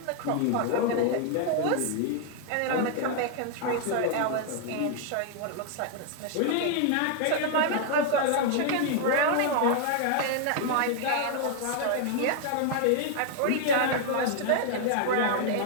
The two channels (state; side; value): different; both; correlation 0.00